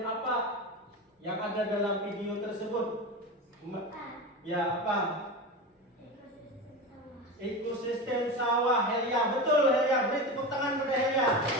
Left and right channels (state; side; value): normal; both; correlation 0.24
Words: apa yang ada dalam video tersebut? Ya, apa? Ekosistem sawah. Helia, betul Helia. Beri tepuk tangan pada Helia.